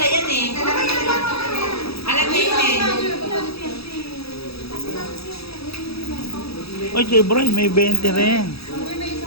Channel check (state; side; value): late; right; 0.77 ms